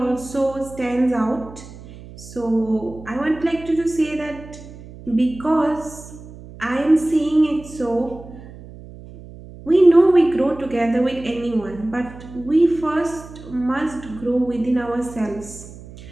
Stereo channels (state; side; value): noise; right; hum, 17 dB below the sound